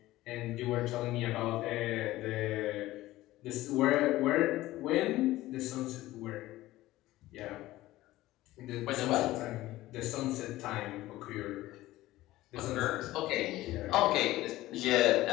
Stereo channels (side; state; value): right; quieter; 16.7 dB